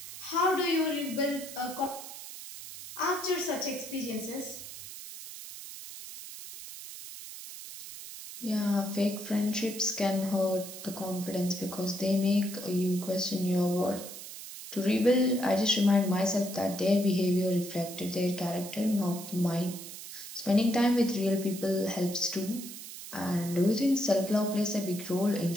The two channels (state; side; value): noise; right; hiss, 12 dB below the sound